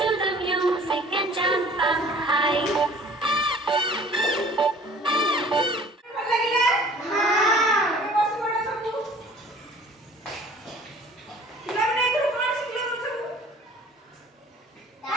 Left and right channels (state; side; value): normal; both; correlation 0.50